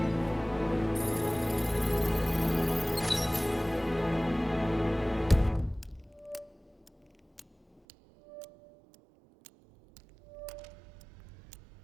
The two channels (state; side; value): drops out; left; at 7.8 s